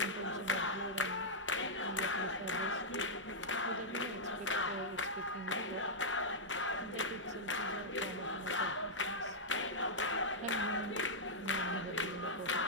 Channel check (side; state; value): both; normal; correlation -0.08